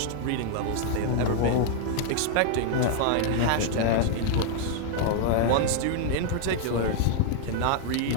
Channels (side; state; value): both; different; correlation 0.00